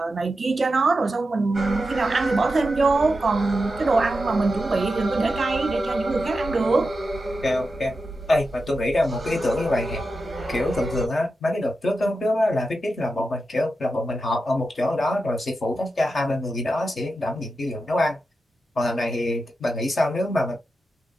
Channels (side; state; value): both; normal; correlation 0.89